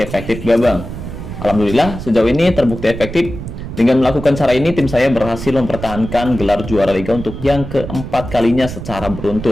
gak Bang? Alhamdulillah, sejauh ini terbukti efektif. Dengan melakukan cara ini, tim saya berhasil mempertahankan gelar juara liga untuk yang keempat kalinya secara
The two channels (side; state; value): right; noise; rumble, 9 dB below the sound